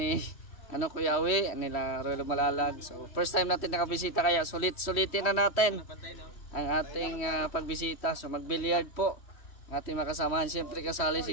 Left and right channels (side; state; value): right; late; 3.1 ms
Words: Kuya Awi, nila Rolo Malalag. So, first time natin nakabisita kaya sulitin na natin ang ating pagbisita. So, mag-billiard po. Ang ating makasamahan. Siyempre kasali